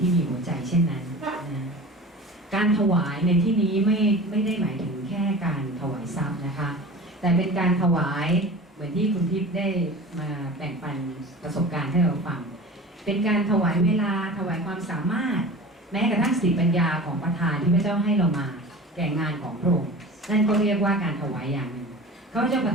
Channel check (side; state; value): both; normal; correlation 0.37